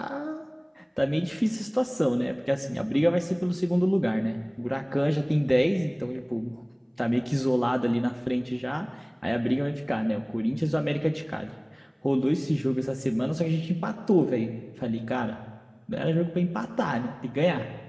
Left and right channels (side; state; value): both; identical; correlation 1.00